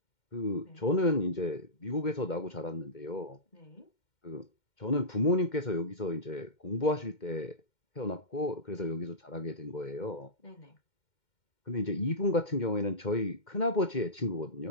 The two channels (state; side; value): late; right; 2.1 ms